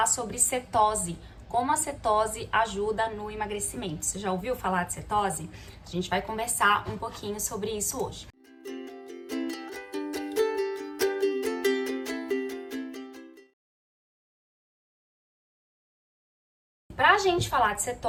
sobre cetose, como a cetose ajuda no emagrecimento. Você já ouviu falar de cetose? A gente vai conversar um pouquinho sobre isso hoje. Para a gente falar de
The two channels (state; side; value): identical; both; correlation 1.00